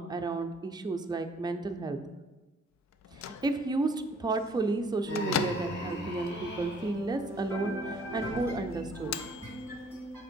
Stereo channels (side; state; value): both; normal; correlation 0.59